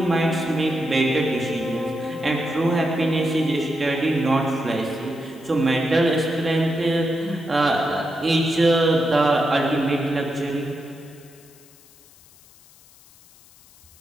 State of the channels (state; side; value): noise; left; hiss, 26 dB below the sound